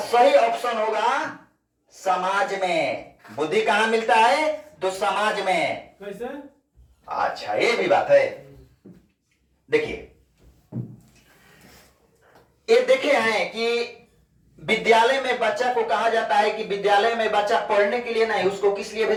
ऑप्शन होगा समाज में। बुद्धि कहां मिलता है? तो समाज में। कैसे? अच्छा ये भी बात है। देखिए ये देखे हैं कि विद्यालय में बच्चा को कहा जाता है कि विद्यालय में बच्चा पढ़ने के लिए नहीं, उसको किस लिए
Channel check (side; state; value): both; identical; correlation 1.00